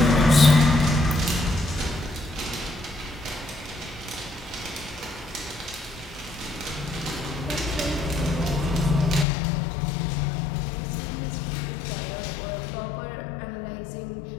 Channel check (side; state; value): right; drops out; at 9.2 s